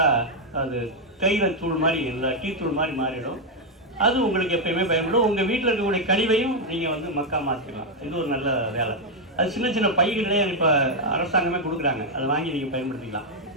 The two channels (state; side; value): normal; both; correlation 0.00